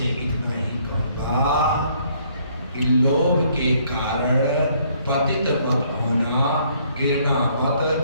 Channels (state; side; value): inverted; both; correlation -0.65